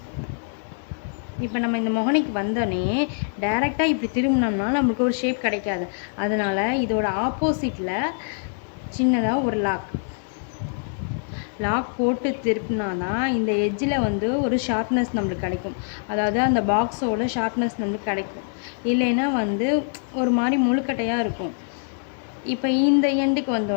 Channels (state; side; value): silent; right; digital silence